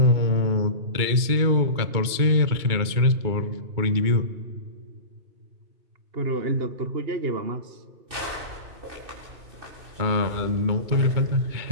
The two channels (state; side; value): late; left; 2.3 ms